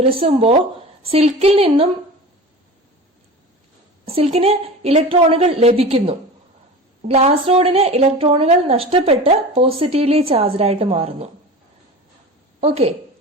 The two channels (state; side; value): normal; both; correlation 0.34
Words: സിൽക്കിന് ഇലക്ട്രോണുകൾ ലഭിക്കുന്നു. ഗ്ലാസ് റോഡിന് ഇലക്ട്രോണുകൾ നഷ്ടപ്പെട്ട് പോസിറ്റീവ്ലി ചാർജ്ഡ് ആയിട്ട് മാറുന്നു. ഓക്കെ,